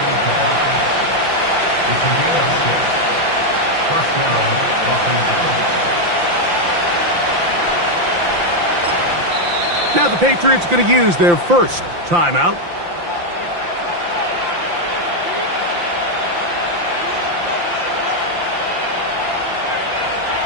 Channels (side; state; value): left; late; 5.8 ms